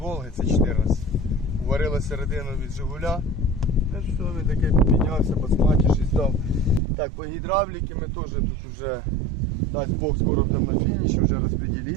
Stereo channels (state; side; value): drops out; left; at 6.8 s